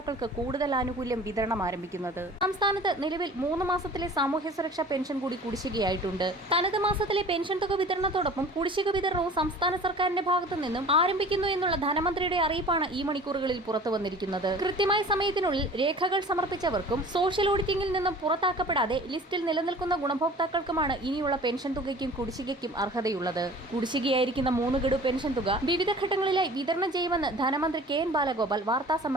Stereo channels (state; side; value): normal; both; correlation 0.44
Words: കൂടുതൽ ആനുകൂല്യം വിതരണം ആരംഭിക്കുന്നത്. സംസ്ഥാനത്ത് നിലവിൽ 3 മാസത്തിലെ സാമൂഹ്യ സുരക്ഷാ പെൻഷൻ കൂടി കുടിശ്ശികയായിട്ടുണ്ട്. തനത് മാസത്തിലെ പെൻഷൻ തുക വിതരണത്തോടൊപ്പം കുടിശ്ശിക വിതരണവും സംസ്ഥാന സർക്കാരിന്റെ ഭാഗത്തു നിന്നും ആരംഭിക്കുന്നു എന്നുള്ള ധനമന്ത്രിയുടെ അറിയിപ്പാണ് ഈ മണിക്കൂറുകളിൽ പുറത്തു വന്നിരിക്കുന്നത്. കൃത്യമായ സമയത്തിനുള്ളിൽ രേഖകൾ സമർപ്പിച്ചവർക്കും സോഷ്യൽ ഓഡിറ്റിംഗിൽ നിന്നും പുറത്താക്കപ്പെടാതെ ലിസ്റ്റിൽ നിലനിൽക്കുന്ന ഗുണഭോക്താക്കൾക്കുമാണ് ഇനിയുള്ള പെൻഷൻ തുകയ്ക്കും കുടിശ്ശികയ്ക്കും അർഹതയുള്ളത്. കുടിശ്ശികയായിരിക്കുന്ന 3 ഗഡു പെൻഷൻ തുക വിവിധ ഘട്ടങ്ങളിലായി വിതരണം ചെയ്യുമെന്ന് ധനമന്ത്രി KN ബാലഗോപാൽ വാർത്താ